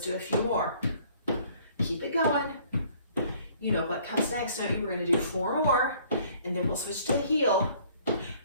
a few more. Keep it going. You know what comes next, don't you? We're going to do 4 more and then we'll switch to a heel.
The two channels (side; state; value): both; inverted; correlation -0.58